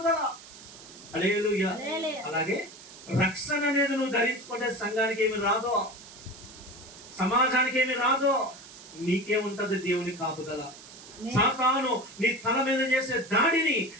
హల్లెలూయా. అలాగే రక్షణ అనేది నువ్వు ధరించుకుంటే సంఘానికి ఏమి రాదో, సమాజానికి ఏమి రాదో, నీకేముంటది దేవుని కాపుదల. సాతాను నీ తల మీద చేసే దాడిని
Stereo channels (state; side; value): noise; right; hiss, 18 dB below the sound